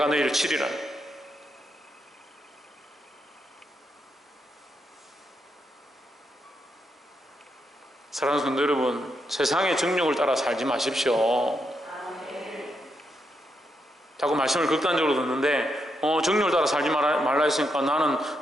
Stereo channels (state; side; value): normal; both; correlation 0.81